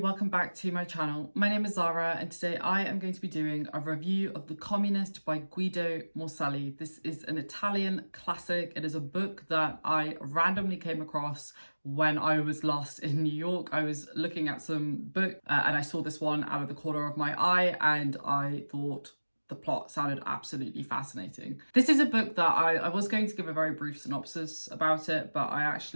back to my channel. My name is Zara and today I am going to be doing a review of The Communist by Guido Morselli. This is an Italian classic. It is a book that I randomly came across when I was lost in New York. I was looking at some book and I saw this one out of the corner of my eye and I thought the plot sounded absolutely fascinating. This is a book that I was going to give a very brief synopsis about it, but I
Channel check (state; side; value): inverted; both; correlation -1.00